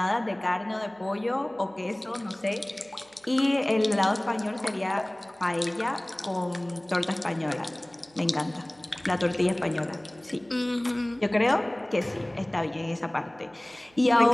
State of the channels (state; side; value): noise; right; hum, 30 dB below the sound